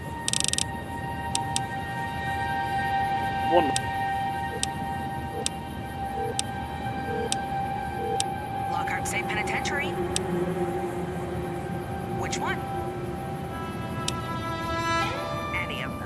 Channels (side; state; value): both; identical; correlation 1.00